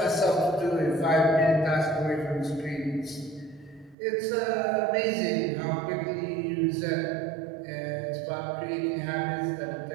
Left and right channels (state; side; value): drops out; left; at 4.0 s